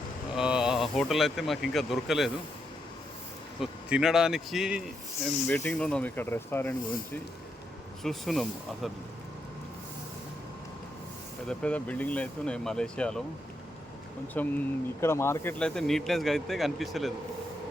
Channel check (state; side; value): normal; both; correlation 0.81